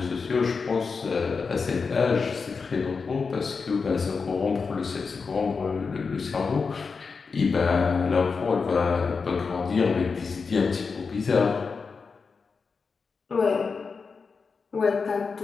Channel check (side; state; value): right; quieter; 5.0 dB